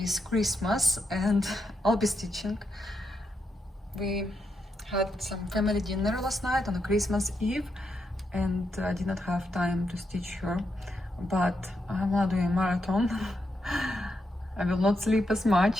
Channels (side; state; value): both; normal; correlation 0.83